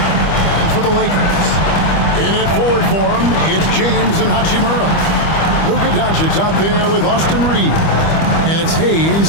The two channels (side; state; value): right; late; 25 ms